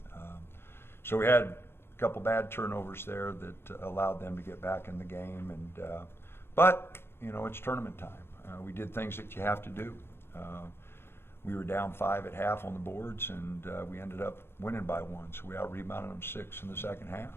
So we had a couple bad turnovers there that allowed them to get back in the game. But it's tournament time. We did things that you have to do. We were down 5 at half on the boards, and we ended up winning by 1. So we out-rebounded them 6 in the second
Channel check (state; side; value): late; right; 0.11 ms